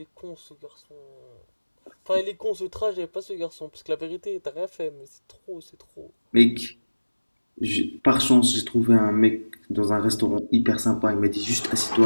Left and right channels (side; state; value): both; inverted; correlation -1.00